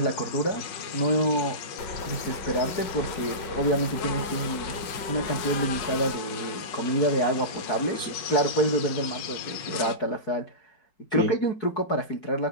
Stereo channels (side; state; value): right; late; 5.1 ms